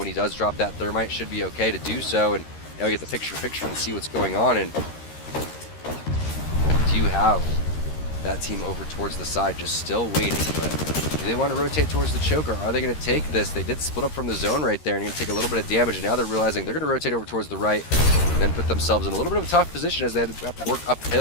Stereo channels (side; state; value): right; late; 13 ms